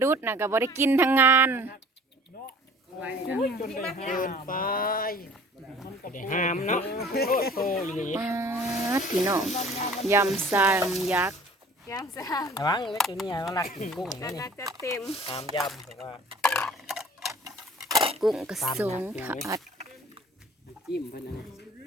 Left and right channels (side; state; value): both; normal; correlation 0.50